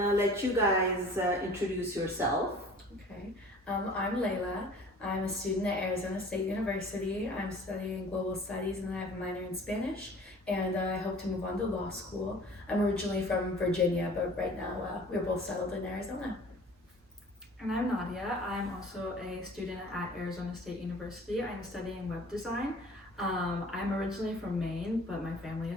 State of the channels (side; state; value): both; normal; correlation 0.47